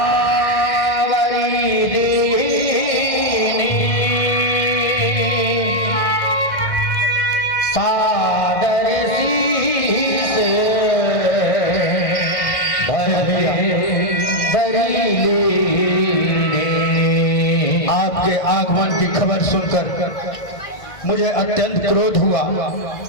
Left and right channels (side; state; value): right; late; 1.8 ms